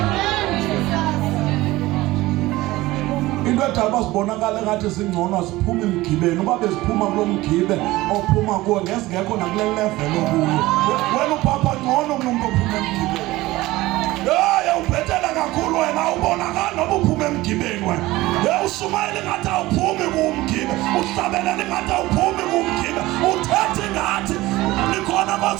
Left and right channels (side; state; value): left; quieter; 18.5 dB